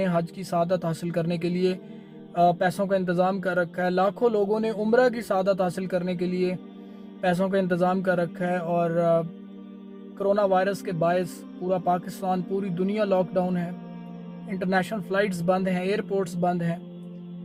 हज की सआदत हासिल करने के लिए पैसों का इंतज़ाम कर रखा है। लाखों लोगों ने उम्रा की सआदत हासिल करने के लिए पैसों का इंतज़ाम कर रखा है। और कोरोना वायरस के बायस पूरा पाकिस्तान, पूरी दुनिया लॉकडाउन है। इंटरनेशनल फ़्लाइट्स बंद हैं, एयरपोर्ट्स बंद हैं।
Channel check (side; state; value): both; identical; correlation 1.00